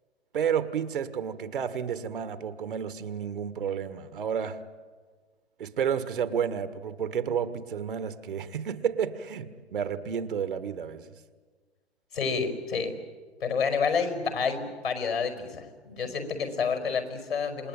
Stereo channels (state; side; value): normal; both; correlation 0.44